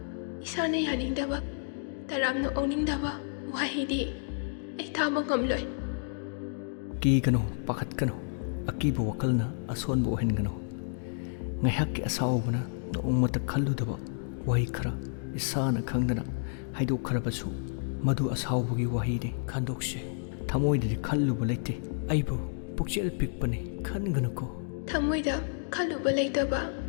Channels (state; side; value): silent; right; digital silence